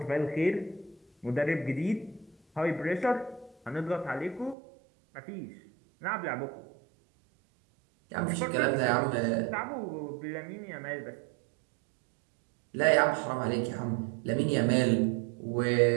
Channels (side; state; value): left; drops out; at 4.5 s